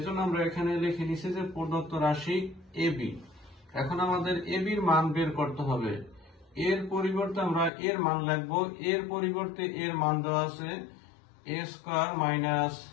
আমরা এখানে লিখে নিছি যে প্রদত্ত রাশি ab। এখন আমাদের ab এর মান বের করতে হবে। এর পরিবর্তে আমরা এর মান লিখব। এর পরিবর্তে এর মান দেওয়া আছে a square minus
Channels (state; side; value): drops out; right; at 7.7 s